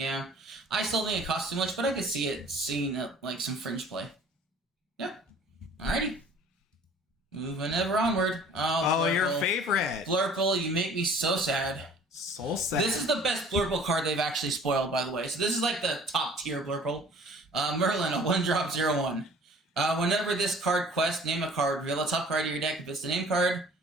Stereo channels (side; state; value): both; normal; correlation 0.50